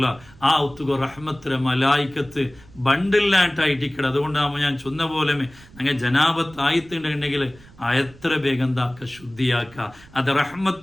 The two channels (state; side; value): noise; right; rumble, 24 dB below the sound